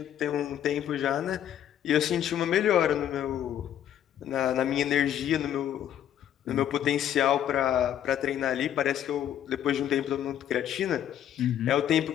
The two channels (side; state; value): right; quieter; 10.6 dB